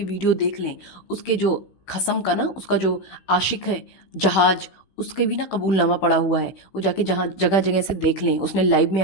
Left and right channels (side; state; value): right; late; 16 ms